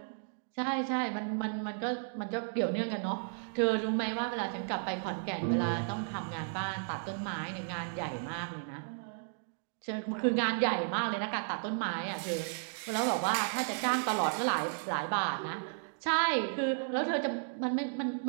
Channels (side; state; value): left; silent; digital silence